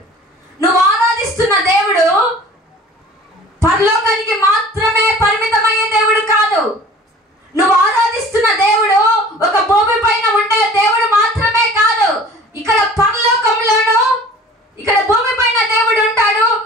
నువ్వు ఆరాధిస్తున్న దేవుడు పరలోకానికి మాత్రమే పరిమితమయ్యే దేవుడు కాదు. నువ్వు ఆరాధిస్తున్న దేవుడు ఒక భూమి పైన ఉండే దేవుడు మాత్రమే కాదు. ఇక్కడ పరలోకంలోను, ఇక్కడ భూమి పైన దేవుడు ఉంటాడు.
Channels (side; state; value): both; normal; correlation 0.45